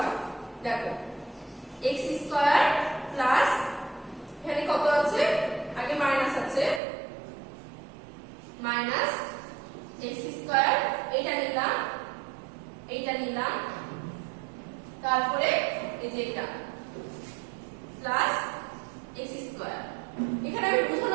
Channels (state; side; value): drops out; left; at 6.8 s